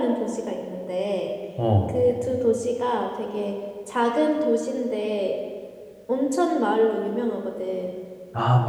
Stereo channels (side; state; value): both; identical; correlation 1.00